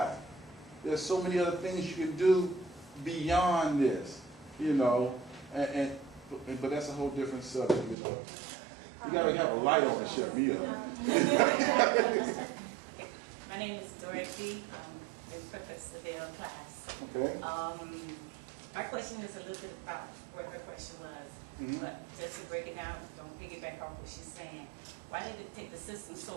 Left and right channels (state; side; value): drops out; left; at 8.0 s